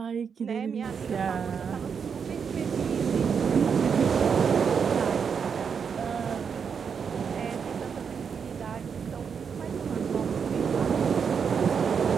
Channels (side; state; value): left; quieter; 6.5 dB